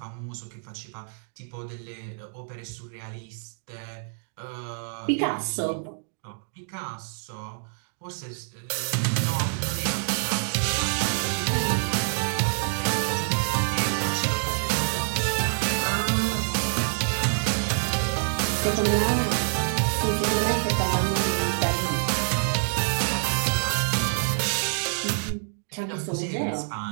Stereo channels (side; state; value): left; silent; digital silence